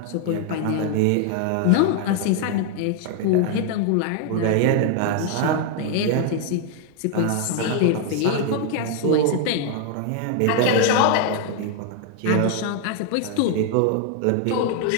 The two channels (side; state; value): both; different; correlation 0.01